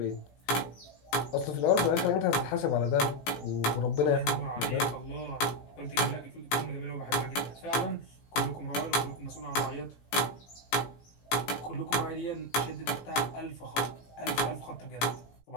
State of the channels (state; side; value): late; right; 17 ms